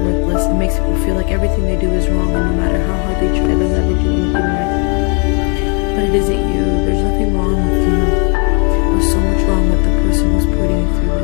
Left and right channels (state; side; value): quieter; right; 37.0 dB